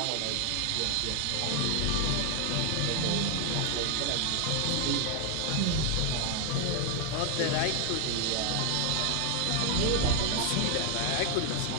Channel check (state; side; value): different; both; correlation 0.00